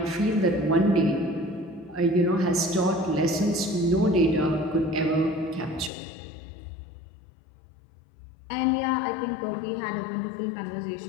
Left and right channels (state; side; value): drops out; right; at 5.9 s